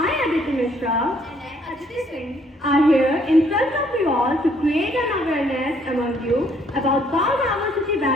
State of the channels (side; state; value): both; normal; correlation 0.66